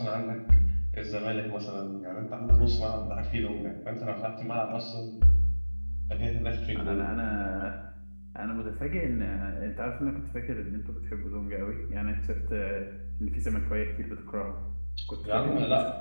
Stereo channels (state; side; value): inverted; both; correlation -1.00